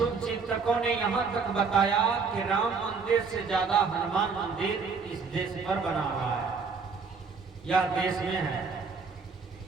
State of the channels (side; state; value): left; quieter; 5.1 dB